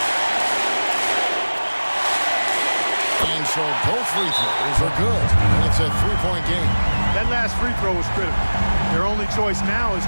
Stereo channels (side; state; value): both; inverted; correlation -1.00